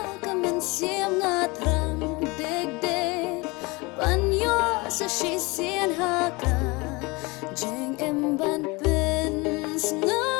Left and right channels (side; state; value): right; quieter; 25.5 dB